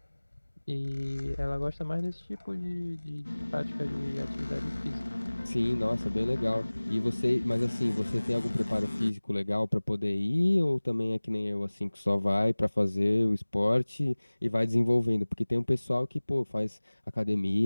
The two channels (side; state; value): both; inverted; correlation -1.00